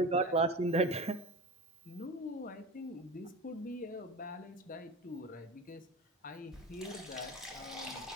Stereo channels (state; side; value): normal; both; correlation 0.30